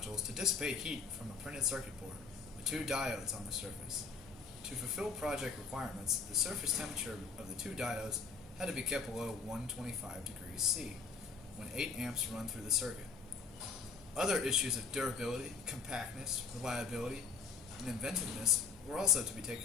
to dissipate heat from a printed circuit board with two diodes on the surface. To fulfill project requirements, the surface temperature of the two diodes had to be kept below 125 degrees C when 8 amps run through the circuit. Other issues of durability, compactness, reliability, and inventiveness were also to be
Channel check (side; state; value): right; quieter; 4.9 dB